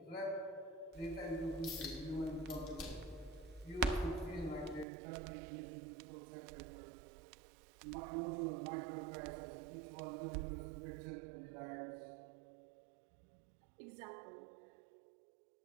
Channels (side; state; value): left; drops out; at 4.9 s